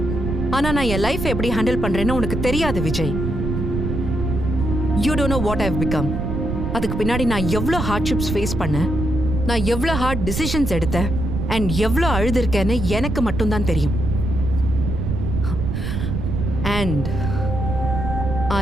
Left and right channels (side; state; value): right; noise; rumble, 2 dB below the sound